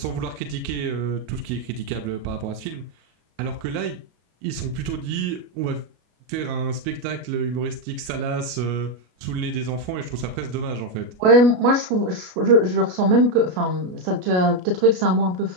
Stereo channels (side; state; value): left; late; 33 ms